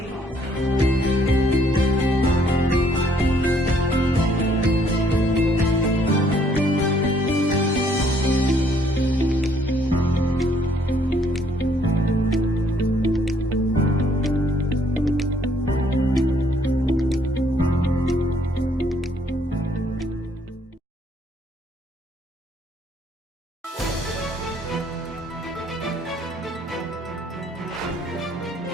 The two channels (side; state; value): both; normal; correlation 0.66